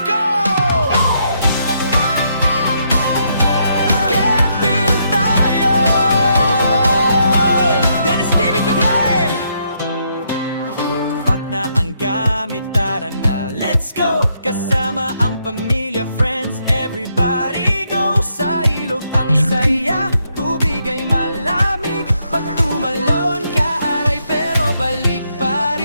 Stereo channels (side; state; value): both; inverted; correlation -0.76